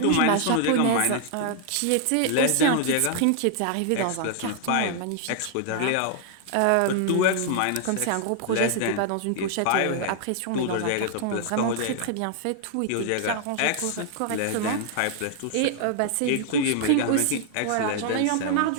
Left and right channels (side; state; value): both; different; correlation 0.00